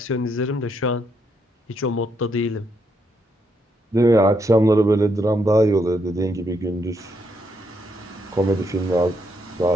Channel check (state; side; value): normal; both; correlation 0.77